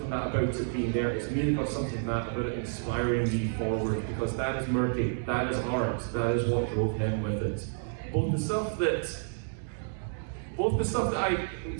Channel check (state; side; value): silent; left; digital silence